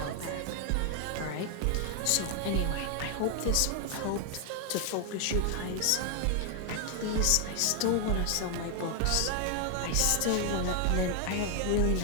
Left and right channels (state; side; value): different; both; correlation 0.00